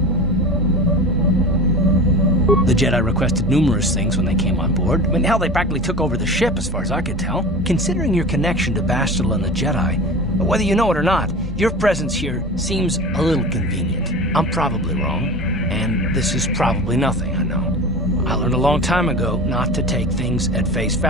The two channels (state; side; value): normal; both; correlation 0.32